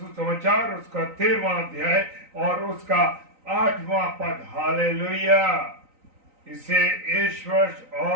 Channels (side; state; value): left; late; 3.9 ms